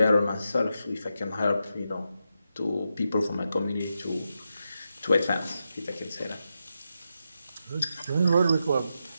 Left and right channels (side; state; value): both; inverted; correlation -0.86